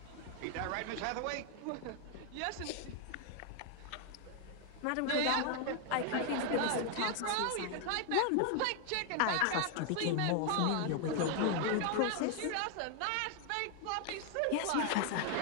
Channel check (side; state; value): both; different; correlation 0.00